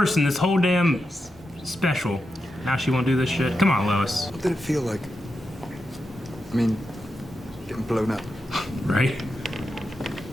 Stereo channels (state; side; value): normal; both; correlation 0.87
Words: this whole damn special. Now she won't do this shit. Come on, Lois. What did it feel like? I mean, getting blown up. Right?